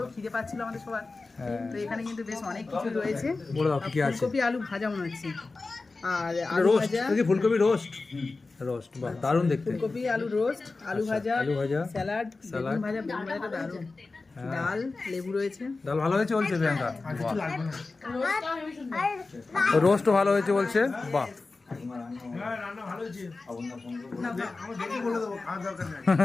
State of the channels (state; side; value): quieter; right; 3.7 dB